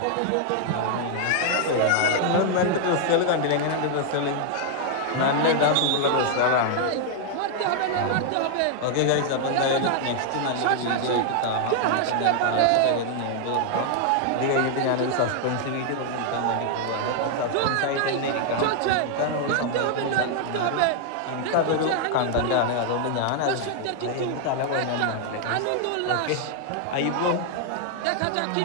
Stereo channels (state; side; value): different; both; correlation 0.00